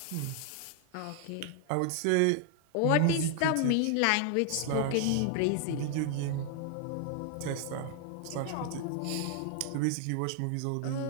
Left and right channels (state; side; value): different; both; correlation 0.00